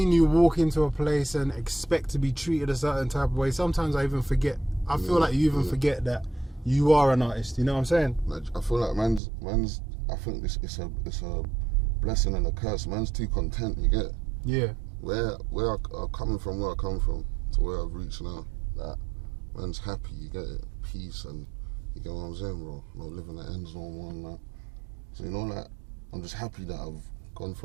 you walk into a place and expect to be treated a certain type of way. Sometimes I even forget. I feel like you even forget that you are an artist. You know what I'm saying? Like, I feel like man's. I think it's a blessing and a curse. Man's too content. You get? Yeah. Where I coming from, where I come from, to where I've reached now. That man's happy. You get it? Peace, and you get what I'm saying, bro. No living at ends no more and that. So you know, like, I'm just happy that I've gone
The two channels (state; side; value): drops out; left; at 9.2 s